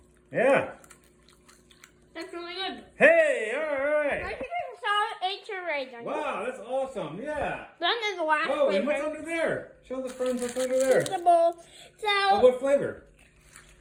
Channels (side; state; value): both; identical; correlation 1.00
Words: Yeah. That's really good. Hey, all right. I think I saw right. Wow, that's awesome. Yeah. Then there's the last flavor. and what's under there? Show the friends what's under there. So, what flavor?